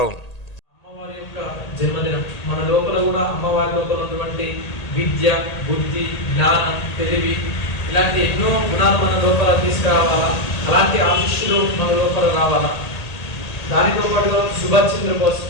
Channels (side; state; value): right; late; 1.8 ms